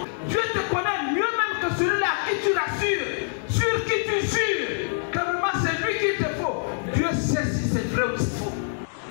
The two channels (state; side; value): silent; right; digital silence